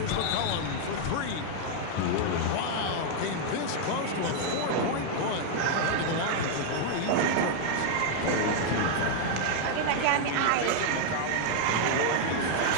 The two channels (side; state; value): both; different; correlation 0.00